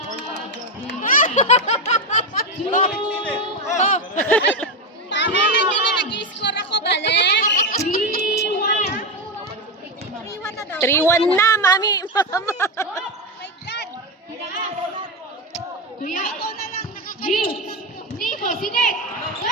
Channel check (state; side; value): normal; both; correlation 0.11